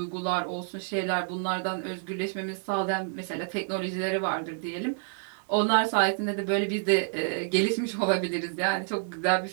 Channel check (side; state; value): left; silent; digital silence